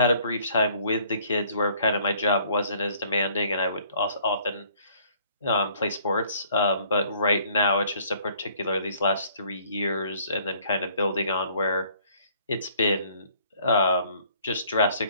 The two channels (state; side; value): inverted; both; correlation -0.60